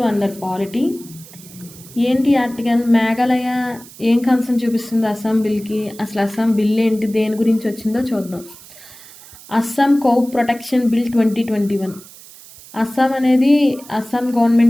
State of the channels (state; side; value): noise; right; hiss, 20 dB below the sound